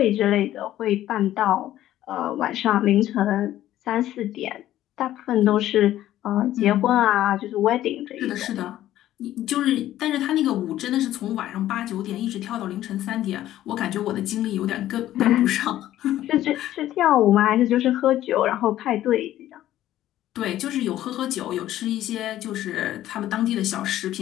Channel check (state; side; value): quieter; right; 13.4 dB